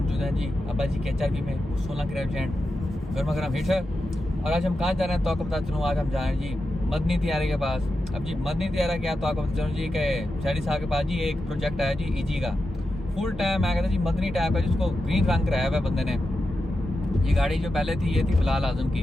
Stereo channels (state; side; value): normal; both; correlation 0.90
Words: मौजूद हैं जी अब्बा जी के HRV में 16 के रेस्टोरेंट गर्मा गर्म हिट है। और आज हम कहाँ जा रहे हैं तो आपको बता चलूँ, आज हम जा रहे हैं जी मदनी तियारे के पास। अब जी मदनी तियारा क्या तो आपको बता चलूँ जी कि शहरी साहब के पास जी एक प्रोजेक्ट है जी EG का फुल टाइम। मैं कहता जी मदनी टाइप का जिसको ग्रीन रंग कराया हुआ है बंदे ने। ये गाड़ी जो पहले थी ये थी बिलाल आजम